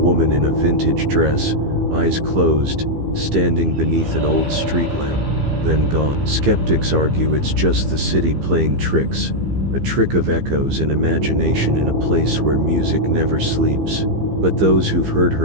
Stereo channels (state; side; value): late; left; 15 ms